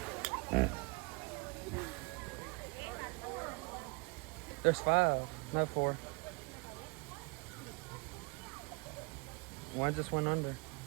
There's 5, no 4. One just went under.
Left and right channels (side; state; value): left; quieter; 30.1 dB